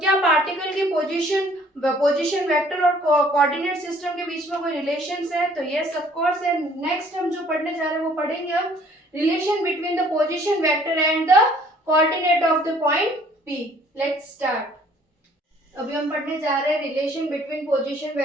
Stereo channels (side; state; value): both; normal; correlation 0.58